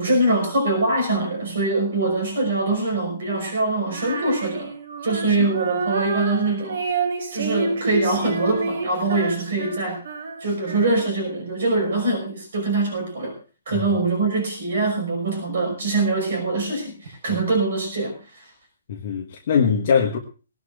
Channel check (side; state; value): both; inverted; correlation -0.52